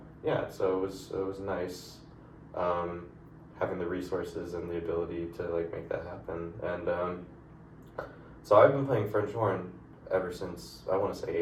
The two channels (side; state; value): both; identical; correlation 1.00